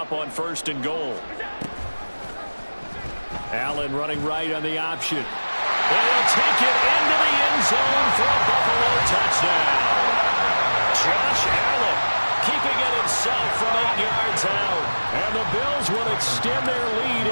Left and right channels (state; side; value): inverted; both; correlation -1.00